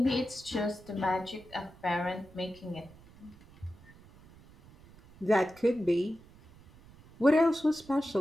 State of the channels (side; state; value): right; noise; rumble, 23 dB below the sound